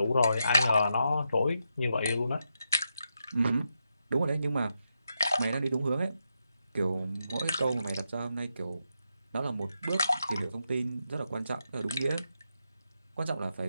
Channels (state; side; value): inverted; both; correlation -0.84